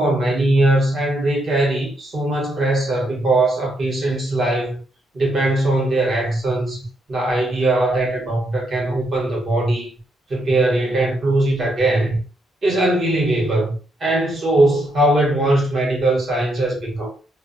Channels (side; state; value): both; normal; correlation 0.77